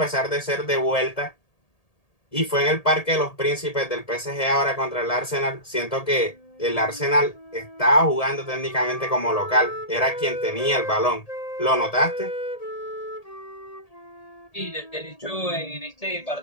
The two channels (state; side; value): late; right; 1.8 ms